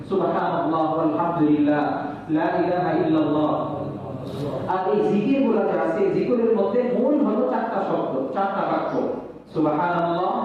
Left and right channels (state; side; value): identical; both; correlation 1.00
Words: সুবহানাল্লাহ আলহামদুলিল্লাহ লা ইলাহা ইল্লাল্লাহ। আর এই জিকিরগুলো যে আছে, জিকিরের মধ্যে মূল হলো 4টা শব্দ, 4টা বাক্য, সুবহানাল্লাহ,